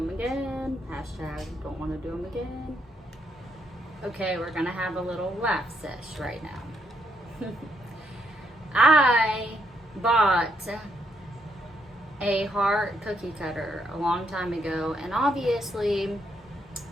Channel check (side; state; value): both; normal; correlation 0.76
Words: again. Hashtag don't want to do them again. Okay, we're gonna have a little laugh sesh right now. I bought a heart cookie cutter a long time ago, and obviously